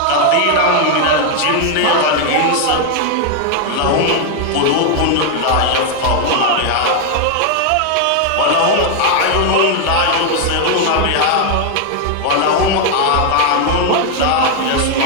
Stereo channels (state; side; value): different; both; correlation 0.01